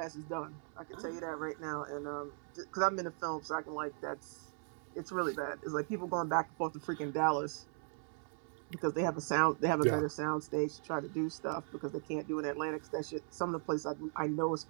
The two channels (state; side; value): silent; left; 52 dB below the other